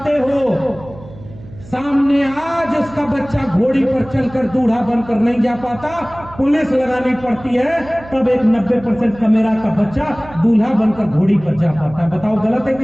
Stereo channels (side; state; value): right; noise; hum, 18 dB below the sound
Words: हो, सामने आज उसका बच्चा घोड़ी पर चलकर दूल्हा बनकर नहीं जा पाता, पुलिस लगानी पड़ती है, तब एक 90% कमेरा का बच्चा दूल्हा बनकर घोड़ी पर जा पाता है। बताओ गलत है